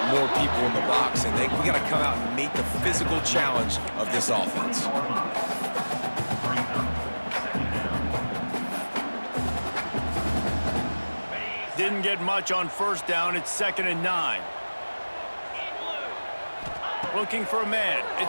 more people in the box, and we got to come out and meet the physical challenge of this offense. Didn't get much on 1st down. It's 2nd and 9. Looking for a man.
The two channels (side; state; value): both; inverted; correlation -1.00